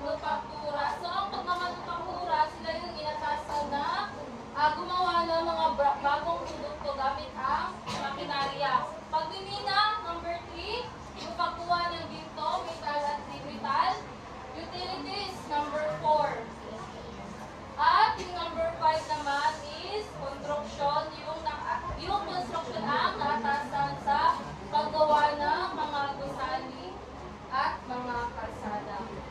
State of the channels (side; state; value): both; identical; correlation 1.00